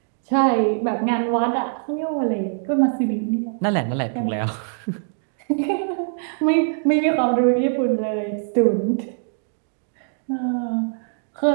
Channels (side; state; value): left; silent; 64 dB below the other